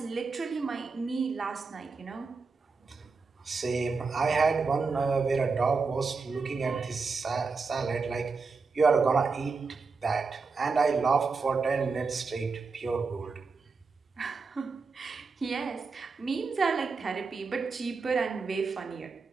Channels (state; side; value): quieter; left; 4.5 dB